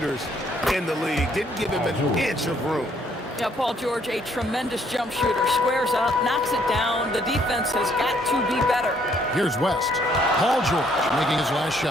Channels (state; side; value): normal; both; correlation 0.67